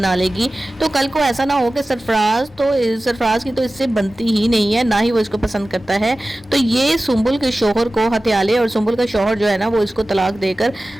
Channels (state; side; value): normal; both; correlation 0.96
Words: लेगी। तो कल को ऐसा ना हो कि सरफराज की तो इससे बनती ही नहीं है, ना ही वो इसको पसंद करता है, तो ये सुंबुल के शौहर को हथिया ले और सुंबुल का शौहर जो है ना वो इसको तलाक देकर